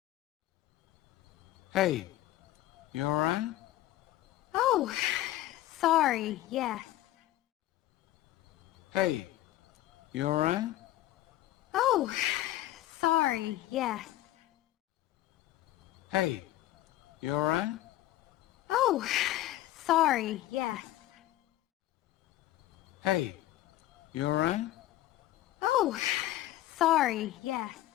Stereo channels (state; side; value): quieter; right; 14.8 dB